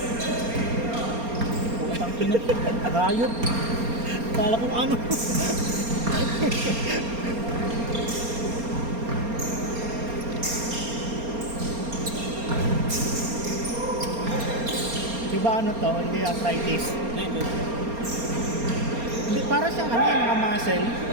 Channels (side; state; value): left; late; 4.3 ms